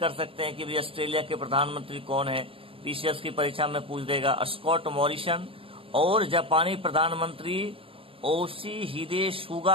सकते हैं कि भाई ऑस्ट्रेलिया के प्रधानमंत्री कौन है, पीसीएस की परीक्षा में पूछ देगा। स्कॉट मॉरिसन और जापानी प्रधानमंत्री योशिहिदे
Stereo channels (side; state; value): left; late; 0.27 ms